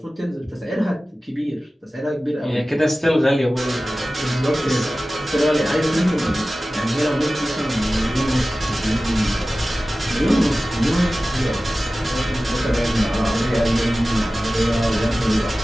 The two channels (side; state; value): both; normal; correlation 0.96